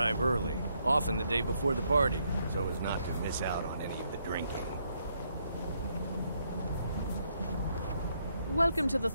early, often the day before the party, so as not to miss out on any of the drinking. Welcome to the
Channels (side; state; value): both; inverted; correlation -0.75